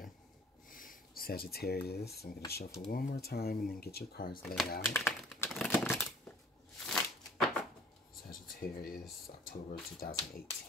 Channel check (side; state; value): both; normal; correlation 0.53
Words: Sagittarius, I'm going to shuffle one more time and then get your cards laid out. Sagittarius, October